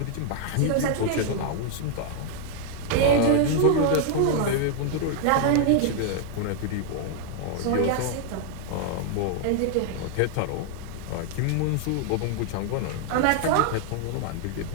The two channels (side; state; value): both; different; correlation 0.00